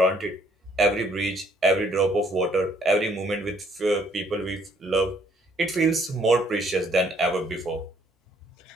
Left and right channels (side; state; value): both; normal; correlation 0.65